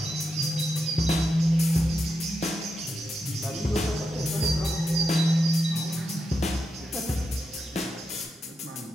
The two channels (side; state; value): both; normal; correlation 0.85